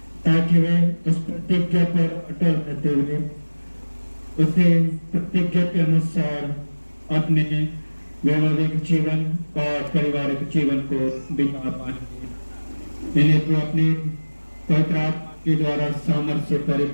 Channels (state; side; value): inverted; both; correlation -1.00